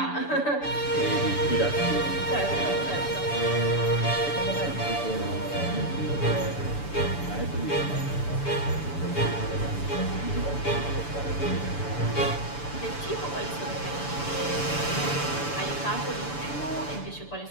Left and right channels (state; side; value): late; right; 6.9 ms